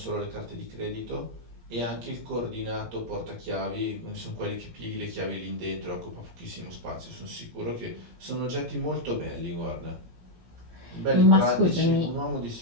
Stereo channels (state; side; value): late; left; 17 ms